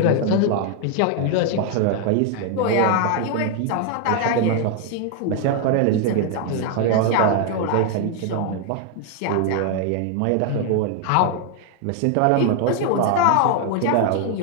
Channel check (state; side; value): different; both; correlation 0.00